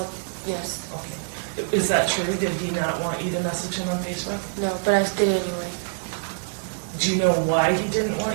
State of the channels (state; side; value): silent; left; digital silence